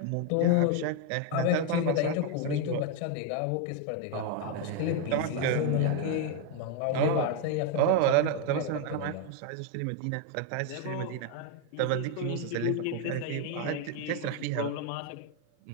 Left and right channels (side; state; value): both; different; correlation 0.01